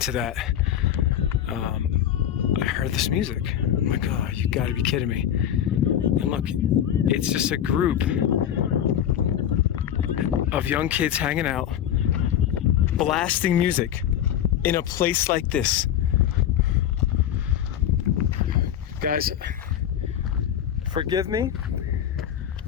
that, I heard this music. I'm like, oh, you gotta be kidding me. And look, it's just a group of young kids hanging out, blasting music in a place like this. Guys, forgive me.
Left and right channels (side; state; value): right; quieter; 10.3 dB